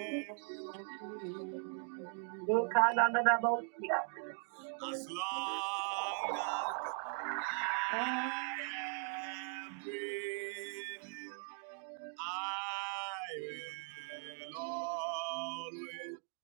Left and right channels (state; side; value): silent; left; 51 dB below the other